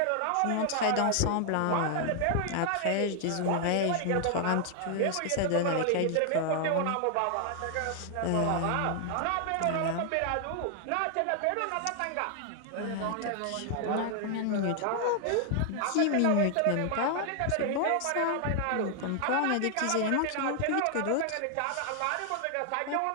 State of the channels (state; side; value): different; both; correlation 0.00